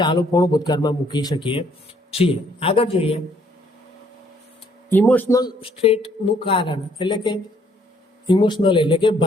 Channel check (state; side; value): normal; both; correlation 0.65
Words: ચાલુ પૂર્ણ ભૂતકાળમાં મૂકી શકીએ છીએ. આગળ જોઈએ ઇમોશનલ સ્ટેટનું કારણ, એટલે કે ઇમોશનલ એટલે કે